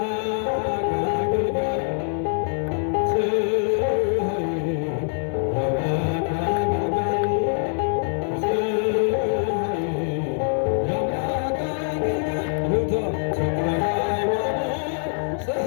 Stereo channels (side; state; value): right; silent; 63 dB below the other